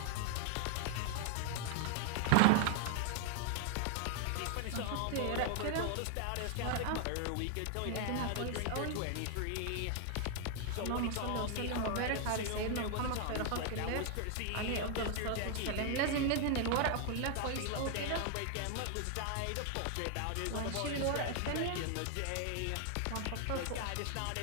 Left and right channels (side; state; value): both; different; correlation 0.00